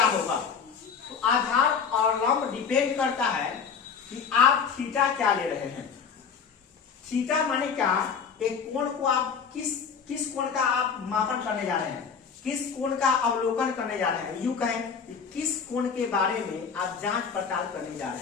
होगा? तो आधार और लंब डिपेंड करता है कि आप थीटा क्या ले रहे हैं। थीटा माने क्या? एक कोण को आप किस कोण का आप मापन करने जा रहे हैं, किस कोण का अवलोकन करने जा रहे हैं। यूं कहें कि किस कोण के बारे में आप जांच पड़ताल करने जा रहे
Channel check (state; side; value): quieter; right; 6.3 dB